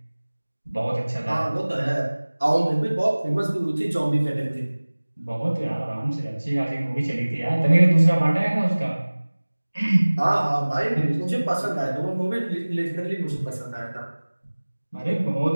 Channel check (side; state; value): both; inverted; correlation -1.00